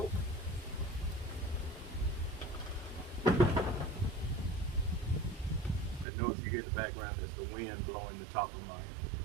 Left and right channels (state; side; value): drops out; left; at 6.1 s